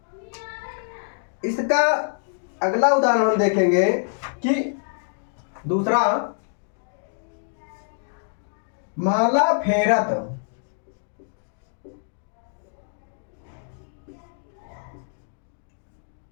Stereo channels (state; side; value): silent; right; digital silence